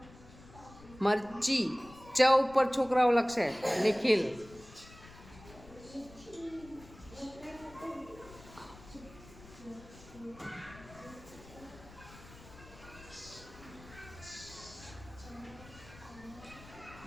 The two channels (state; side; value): noise; left; rumble, 19 dB below the sound